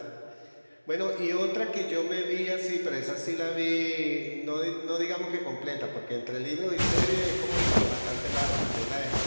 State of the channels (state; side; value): inverted; both; correlation -1.00